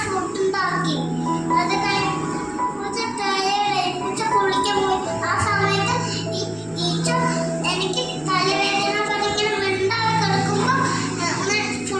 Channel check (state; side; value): noise; right; rumble, 25 dB below the sound